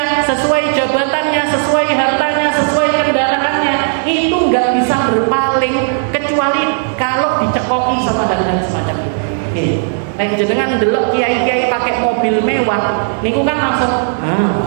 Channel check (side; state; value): left; silent; digital silence